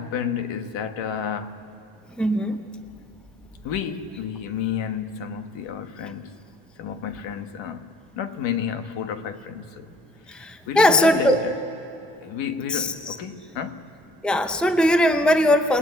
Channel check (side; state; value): both; normal; correlation 0.58